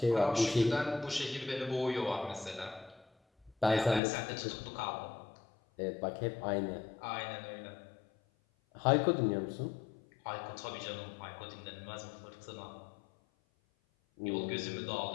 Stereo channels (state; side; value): drops out; right; at 4.0 s